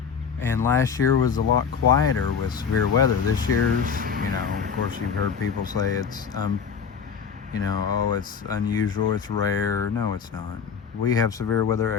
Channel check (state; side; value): quieter; right; 6.6 dB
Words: And last year was a lot quieter with severe weather. This year's, you know, of course you've heard people say it's, you know, oh, it's unusual, it's rare. No, it's not. we have severe weather